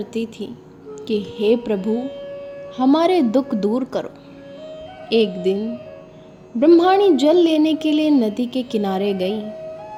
थी कि हे प्रभु, हमारे दुख दूर करो। एक दिन ब्रह्मणी जल लेने के लिए नदी के किनारे गई।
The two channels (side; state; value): both; identical; correlation 1.00